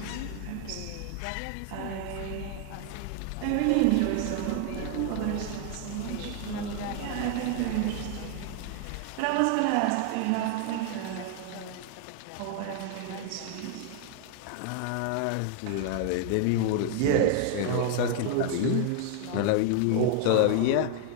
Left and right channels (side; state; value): both; different; correlation 0.00